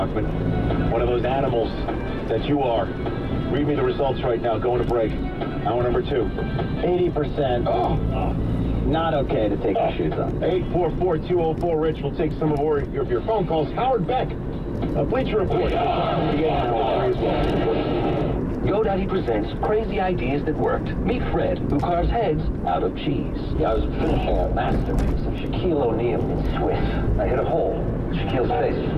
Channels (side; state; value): both; identical; correlation 1.00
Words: One of those animals that you are. Read me the results right now. Going to break. Hour number 2. 80%. Not okay to take your shoes off. 844-204-RICH. We'll take some of your phone calls. Howard Beck, Bleacher Report. GoDaddy presents crazy ideas that worked. Meet Fred, who carves heads out of cheese. Yeah, I was finishing a masterpiece of Shaquille O'Neal in Swiss. I hit a hole. Shaquille's face